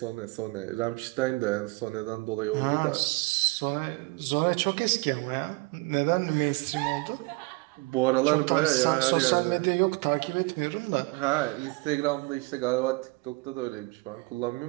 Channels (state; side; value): quieter; left; 24.9 dB